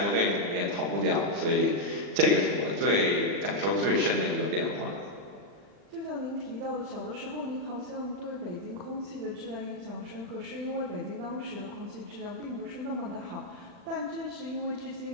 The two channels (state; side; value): late; left; 40 ms